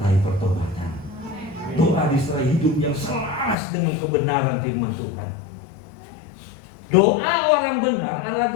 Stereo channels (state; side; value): drops out; right; at 3.6 s